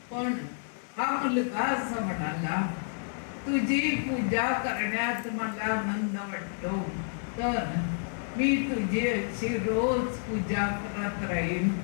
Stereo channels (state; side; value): silent; right; 57 dB below the other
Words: पण हा मुलगा असं म्हणाला, तुझी पूजा करण्यात मला आनंद वाटतो, तर मी तुझी अशी रोज पूजा करत राहीन,